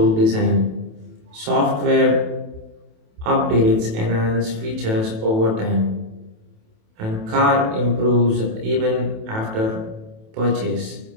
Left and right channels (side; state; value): left; late; 27 ms